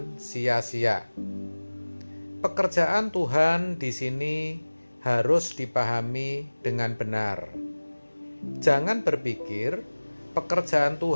sia-sia. Pekerjaan Tuhan di sini harus dipahami dengan benar. Jangan berpikir pekerjaan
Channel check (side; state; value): both; inverted; correlation -1.00